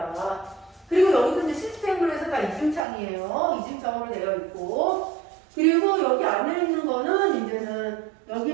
그리고 여기도 이제 시스템으로 해서 다 이중창이에요. 이중창으로 되어 있고 그리고 여기 안에 있는 거는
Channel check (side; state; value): left; drops out; at 2.8 s